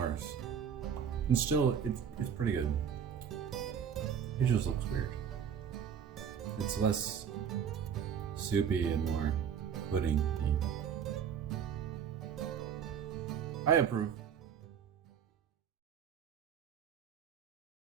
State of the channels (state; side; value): quieter; left; 7.9 dB